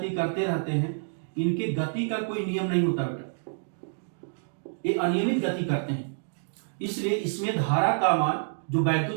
करते रहते हैं। इनके गति का कोई नियम नहीं होता बेटा, ये अनियमित गति करते हैं। इसलिए इसमें धारा का मान, जो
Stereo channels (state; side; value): silent; left; digital silence